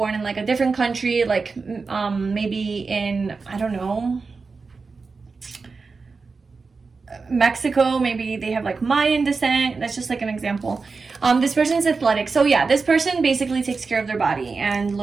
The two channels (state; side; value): quieter; left; 4.5 dB